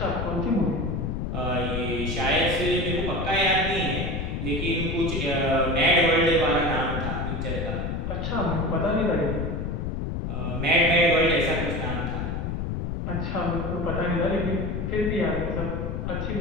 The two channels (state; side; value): noise; left; rumble, 3 dB below the sound